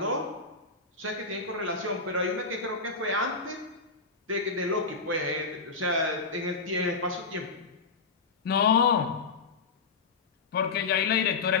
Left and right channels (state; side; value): quieter; right; 4.4 dB